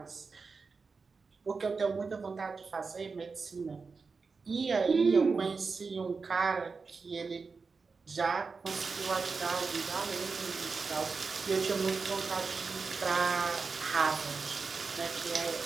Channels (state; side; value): quieter; left; 4.6 dB